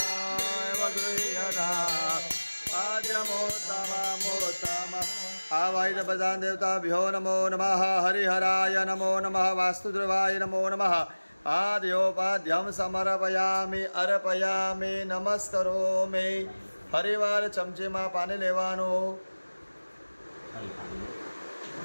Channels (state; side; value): inverted; both; correlation -1.00